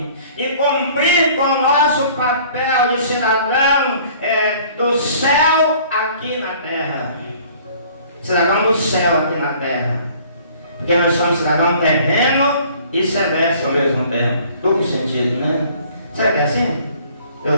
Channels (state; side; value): inverted; both; correlation -0.54